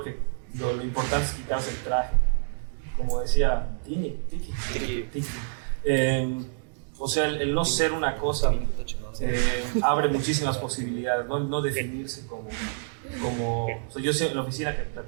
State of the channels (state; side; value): silent; left; digital silence